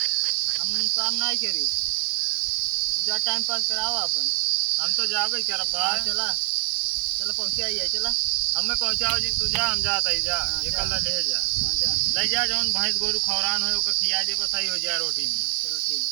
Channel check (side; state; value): left; quieter; 32.1 dB